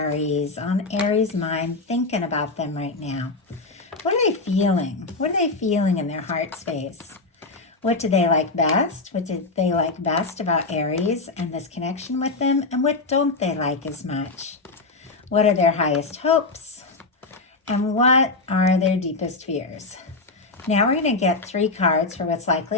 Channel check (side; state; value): right; quieter; 3.6 dB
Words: on Aries' mind, thinking about them right now? What are they feeling? What are they feeling in their heart space? What do they like best? What did they like best about Aries and this connection with them? And what don't they like as much? What are their highest hopes? And what are their deepest fears? Now we're going to get 3 cards for what's